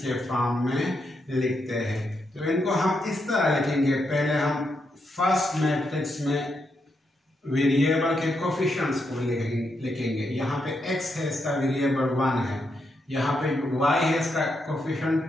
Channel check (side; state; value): both; normal; correlation 0.81